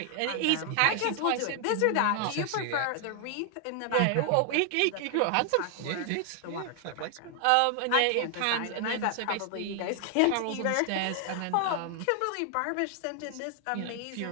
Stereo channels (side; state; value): both; different; correlation 0.00